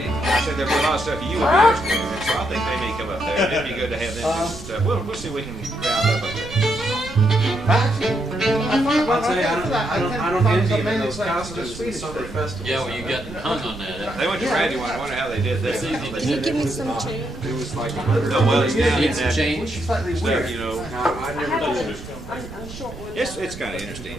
I said there'd be a lot of stuff you would be interested in. So I think they may come up there. It'd be good to have them do some stuff. We'll see if we can round up a bit. I'll tell you, I don't envy him in those costumes in the summer festival. Yeah, well, you got hung on that. They went to Randy one. I wonder how they did that. Can you give me some change? It was like No, well, it's down in Need some that change. stuff, you know. I never did it. I'm short one. It's kind of interesting,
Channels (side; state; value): right; noise; rumble, 14 dB below the sound